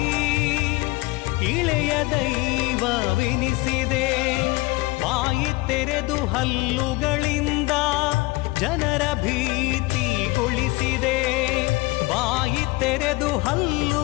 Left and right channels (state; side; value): quieter; right; 22.8 dB